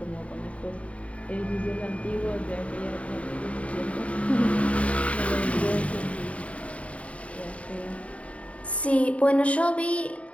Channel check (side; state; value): right; late; 0.065 ms